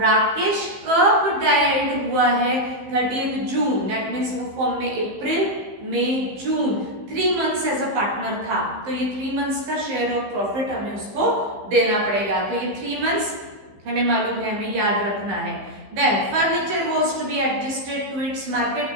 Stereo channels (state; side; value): late; left; 15 ms